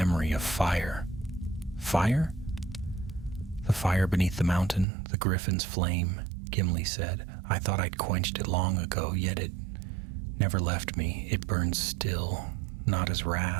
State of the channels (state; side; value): drops out; left; at 4.9 s